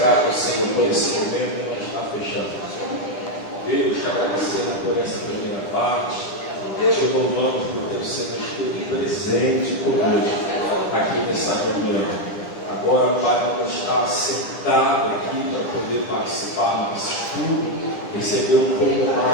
ao Senhor por esse momento que nós está fechando. Deus, te agradecendo por essa primeira parte, te louvamos por ter o Senhor esteve presente conosco aqui nessa reunião. Agora, Pai, vamos estar sentado aqui para poder participar do nosso estudo, receber um pouco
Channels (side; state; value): right; late; 10 ms